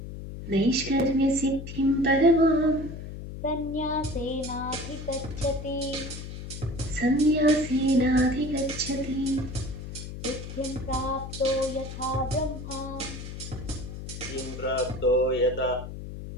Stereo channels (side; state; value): left; noise; hum, 9 dB below the sound